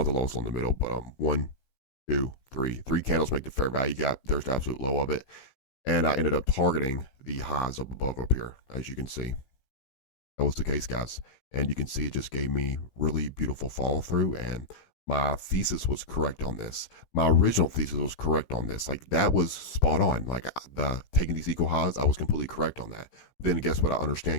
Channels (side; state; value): right; late; 15 ms